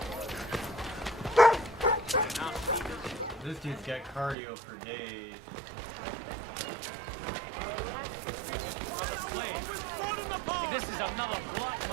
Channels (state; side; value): drops out; left; at 4.4 s